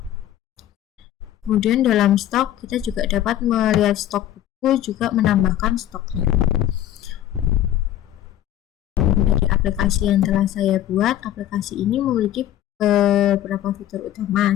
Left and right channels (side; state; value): right; quieter; 12.3 dB